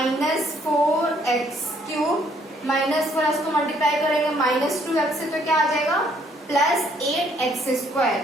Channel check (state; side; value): normal; both; correlation 0.66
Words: -4 को मल्टीप्लाई करेंगे -2x से तो क्या आ जाएगा +8x²,